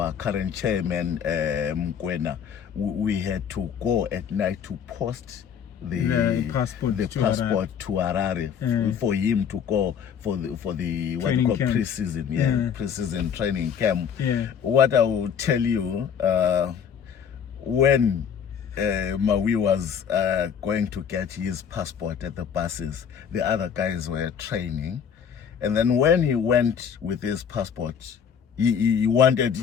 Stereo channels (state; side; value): quieter; right; 7.7 dB